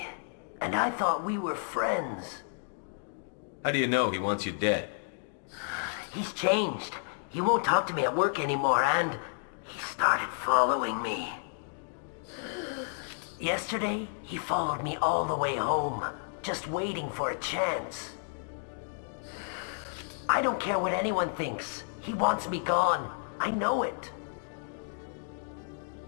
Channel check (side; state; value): right; silent; digital silence